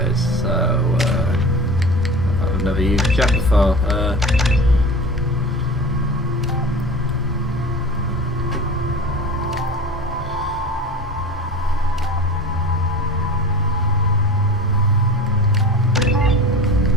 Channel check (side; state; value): both; normal; correlation 0.35